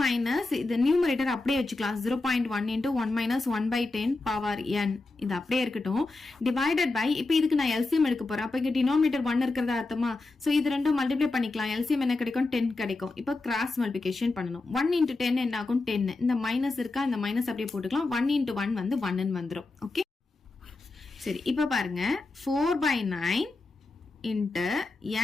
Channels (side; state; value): right; quieter; 3.3 dB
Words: இது நியூமரேட்டர் அப்படியே வச்சுக்கலாம். 0.1 into 1 minus 1/10 பவர் n இது அப்படியே இருக்கட்டும். டிவைடட் பை, இப்போ இதுக்கு நான் LCM எடுக்க போறேன். அப்ப இங்க டினாமினேட்டர் 1 இருக்கிறதா அர்த்தமா? சோ இது ரெண்டும் மல்டிப்ளை பண்ணிக்கலாம். LCM என்ன கிடைக்கும், 10 கிடைக்கும். இப்போ கிராஸ் மல்டிப்ளிகேஷன் பண்ணணும். 1 into 10 என்ன ஆகும், 10. இந்த மைனஸ் இருக்கா, இந்த மைனஸ் அப்படியே போட்டுக்கலாம். 1 into 1 வந்து 1 வந்துரும். ஓகே, சரி, இப்ப பாருங்க 4/9 இன்ட்டு